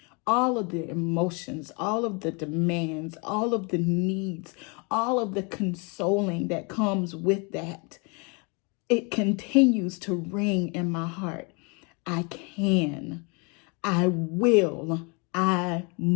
all of the emotions, all of the demands, all of the needs, all of the consoling that comes with that, it continues to ring in my heart. I can, I will, I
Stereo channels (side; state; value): right; quieter; 32.2 dB